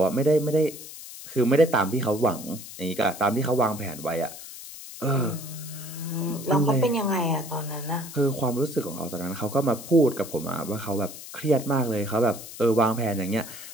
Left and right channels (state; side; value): noise; left; hiss, 13 dB below the sound